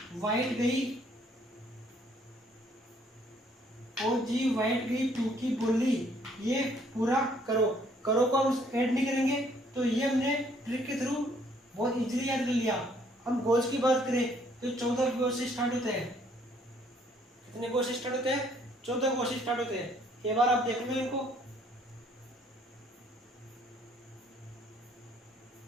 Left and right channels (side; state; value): both; normal; correlation 0.64